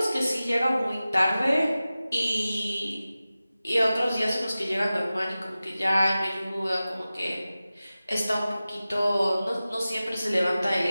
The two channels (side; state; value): both; inverted; correlation -0.96